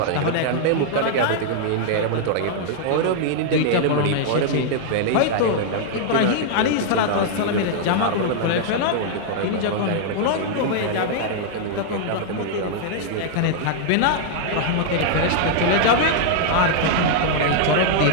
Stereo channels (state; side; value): different; both; correlation -0.01